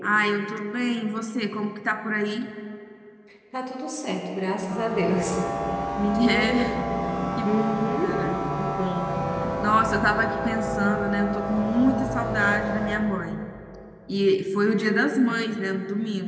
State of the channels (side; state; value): both; identical; correlation 1.00